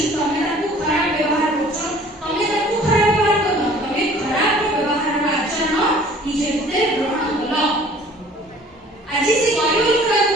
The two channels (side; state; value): both; normal; correlation 0.51